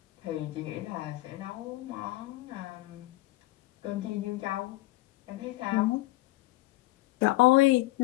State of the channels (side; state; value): right; quieter; 18.9 dB